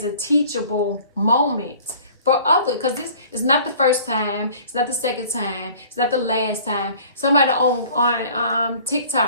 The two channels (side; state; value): both; inverted; correlation -0.49